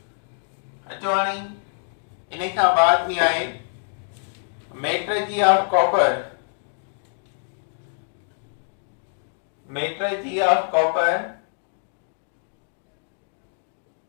अचो हाणे इन खां बाद में आहे मेट्रलर्जी ऑफ कॉपर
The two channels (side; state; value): right; silent; digital silence